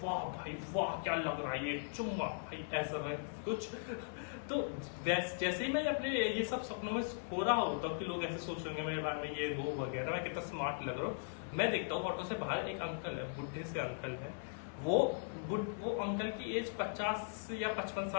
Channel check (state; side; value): silent; right; 52 dB below the other